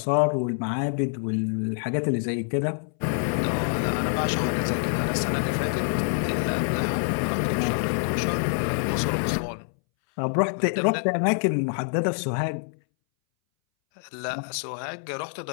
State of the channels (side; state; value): right; silent; 61 dB below the other